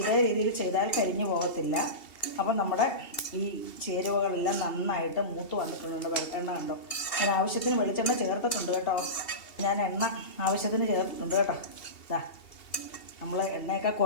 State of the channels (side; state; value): right; late; 2.8 ms